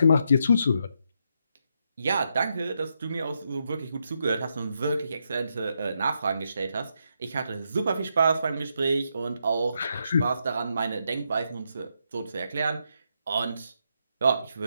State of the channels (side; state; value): both; inverted; correlation -0.80